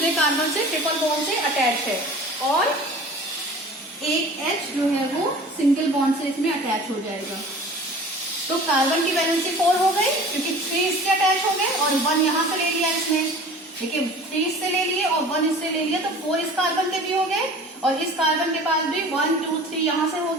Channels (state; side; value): normal; both; correlation 0.42